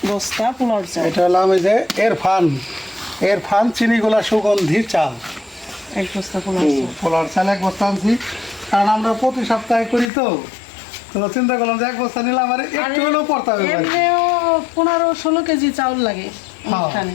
বস্তা পোলাও চাল। এটা হলাম এই যে এরফান চিনিগুলা সুগন্ধি চাল, 1 বস্তা পোলাও চাল 1 বস্তা আনছি। কারণ আমরা প্রতি সপ্তাহে করি, তো চিন্তা করলাম যে 1 বস্তা নিলাম, আর একটু হলেও পড়তে হবে। 15-16 কেজি চাউল লাগে এখানে।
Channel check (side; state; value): right; drops out; at 10.1 s